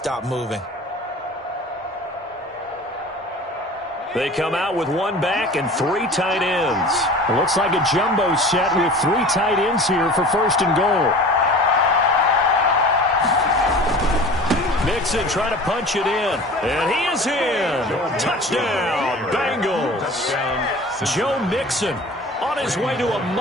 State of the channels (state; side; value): normal; both; correlation 0.40